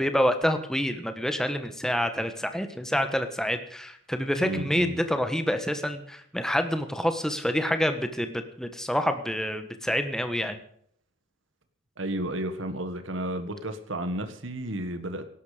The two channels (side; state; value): both; normal; correlation 0.82